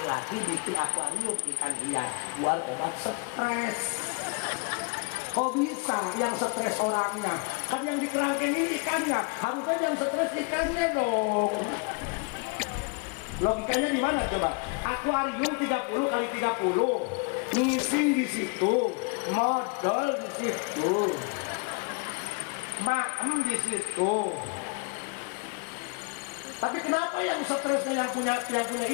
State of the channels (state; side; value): quieter; right; 32.1 dB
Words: bikin akuarium ikan hias buat obat stres kok bisa yang stres orangnya kan yang di kerangkengin ikannya harusnya yang stres ikannya dong logikanya di mana coba akuarium 30 kali 30 ngisi di situ modal di situ maem di situ. Tapi kenapa yang stresnya yang punya